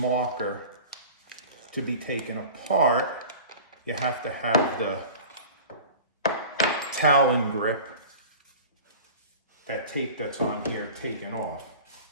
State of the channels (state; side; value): inverted; both; correlation -0.38